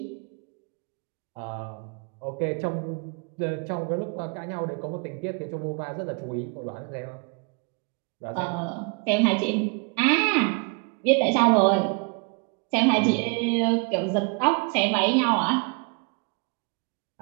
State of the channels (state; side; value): quieter; left; 34.1 dB